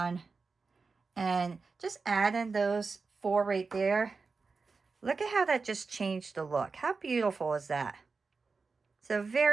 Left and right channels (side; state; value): left; quieter; 4.4 dB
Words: And just adding those 4 right there. Look at how that just changed the look. How beautiful is that? So